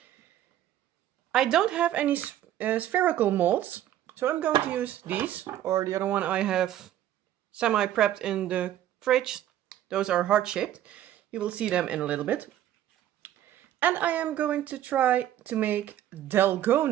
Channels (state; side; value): quieter; left; 12.1 dB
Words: I don't have any spherical molds, so I'm going to use these, or the other one I have semi-prepped in the fridge. Those are heart-shaped. You will see them in a little bit. And I am going to try to make